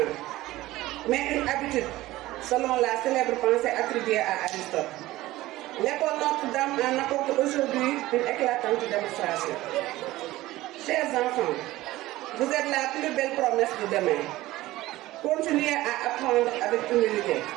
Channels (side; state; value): left; quieter; 17.3 dB